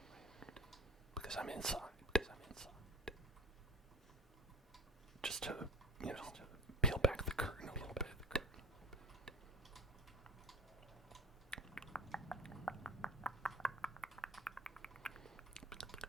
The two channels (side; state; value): both; normal; correlation 0.34